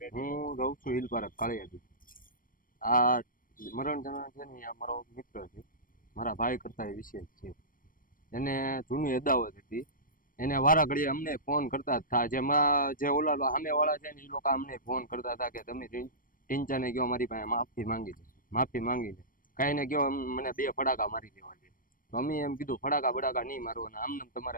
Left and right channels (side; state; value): right; late; 0.40 ms